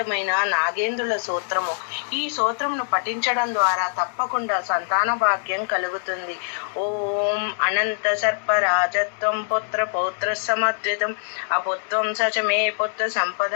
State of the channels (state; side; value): silent; right; digital silence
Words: నాగేంద్రుల సూత్రము. ఈ సూత్రమును పఠించడం ద్వారా తప్పకుండా సంతాన భాగ్యం కలుగుతుంది. ఓం అనంత సర్పరాజత్వం పుత్ర పౌత్ర సమద్వితం అపుత్వం సచమే పుత్ర